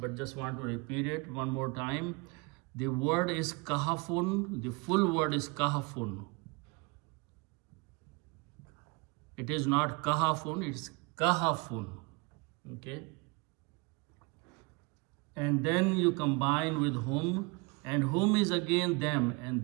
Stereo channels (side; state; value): left; quieter; 27.6 dB